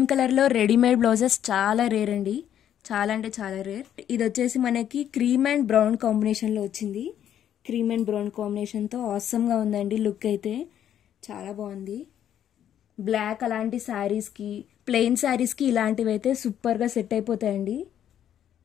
కలర్ లో రెడీమేడ్ బ్లౌజెస్ చాలా రేర్ అండి, చాలా అంటే చాలా రేర్. ఇది వచ్చేసి మనకి క్రీమ్ అండ్ బ్రౌన్ కాంబినేషన్ లో వచ్చింది, క్రీమ్ అండ్ బ్రౌన్ కాంబినేషన్ తో ఆసమ్ గా ఉందండి. లుక్ అయితే చాలా బాగుంది. బ్లాక్ అలాంటి శారీస్ కి, ప్లెయిన్ శారీస్ కి ఇలాంటివి అయితే సూపర్ గా సెట్ అయిపోతాయండి.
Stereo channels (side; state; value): right; quieter; 10.2 dB